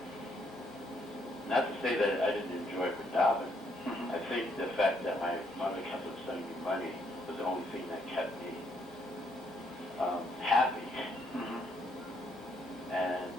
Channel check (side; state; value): both; normal; correlation 0.72